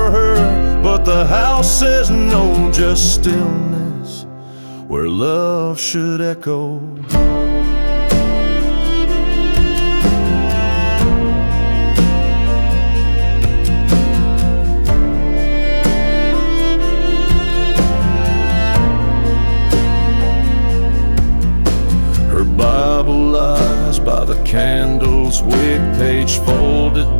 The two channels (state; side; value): inverted; both; correlation -1.00